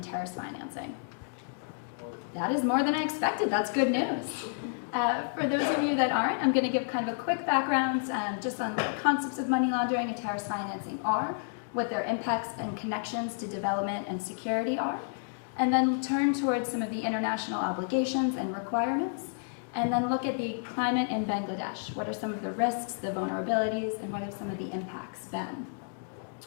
terrorist financing? That is more than I expected. That's good news. For those of you that aren't, I'm going to give kind of a quick background just on what concepts of money laundering and terrorist financing are, what their impacts and connections to development and security are, and then turn towards some of the international obligations and requirements, and then look at the climate in Bangladesh. What are some of the risks, the vulnerabilities, and what have some of the impacts been?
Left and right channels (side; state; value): right; silent; digital silence